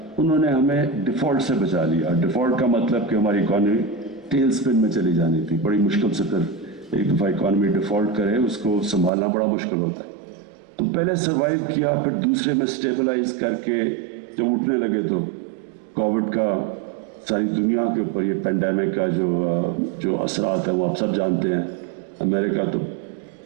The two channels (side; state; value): left; drops out; at 9.1 s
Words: انہوں نے ہمیں ڈیفالٹ سے بچا لیا. ڈیفالٹ کا مطلب کہ ہماری اکانومی ٹیل سپن میں چلی جانی تھی. بڑی مشکل سے پھر ایک دفعہ اکانومی ڈیفالٹ کرے اس کو سنبھالنا بڑا مشکل ہوتا ہے. تو پہلے سروائیو کیا, پھر دوسرے میں سٹیبلائز کر کے جب اٹھنے لگے تو کووڈ کا ساری دنیا کے اوپر یہ پینڈیمک کا جو اثرات ہیں وہ آپ سب جانتے ہیں. امریکہ تو